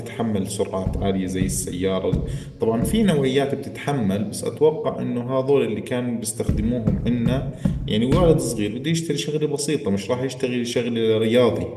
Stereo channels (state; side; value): identical; both; correlation 1.00